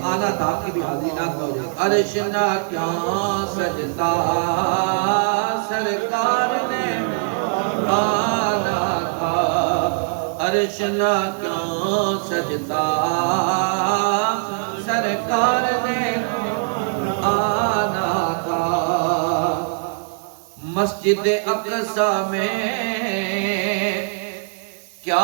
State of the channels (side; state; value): left; silent; 65 dB below the other